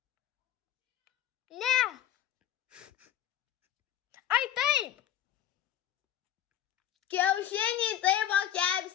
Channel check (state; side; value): quieter; right; 11.0 dB